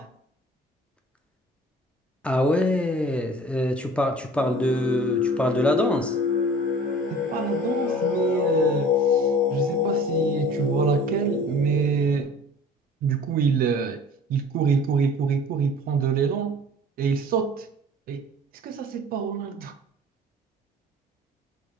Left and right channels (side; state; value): both; normal; correlation 0.45